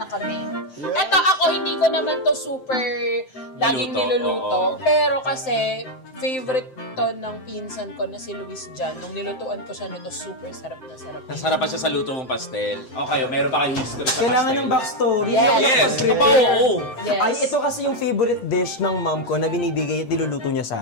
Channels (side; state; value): right; late; 7.7 ms